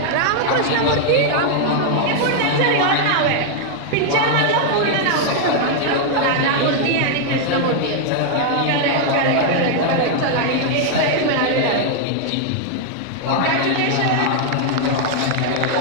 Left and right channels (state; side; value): different; both; correlation 0.00